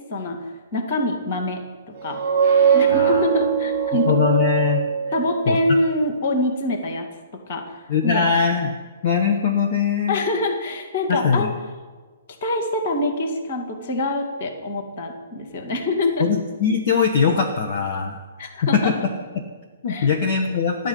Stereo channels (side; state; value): both; inverted; correlation -0.44